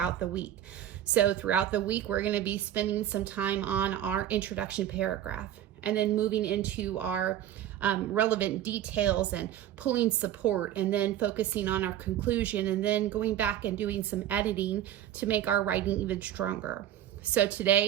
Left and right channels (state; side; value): quieter; left; 11.6 dB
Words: the week. So throughout the week, we're going to be spending some time on our introduction paragraph and then moving into our relevant details and pulling support, and then focusing on our conclusion, and then going back and doing some editing to make our writing even stronger. So